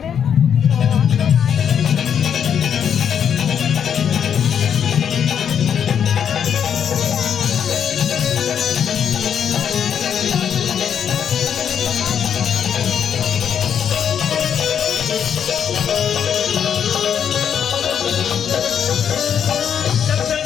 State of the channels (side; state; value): right; quieter; 8.3 dB